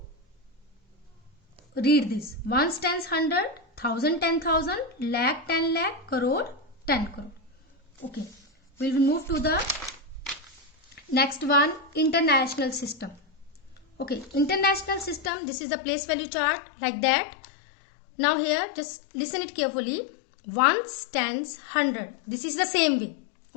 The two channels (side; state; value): right; drops out; at 15.3 s